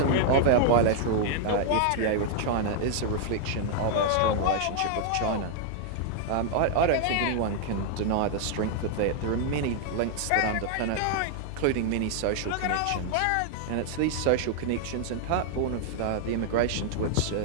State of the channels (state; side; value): different; both; correlation 0.00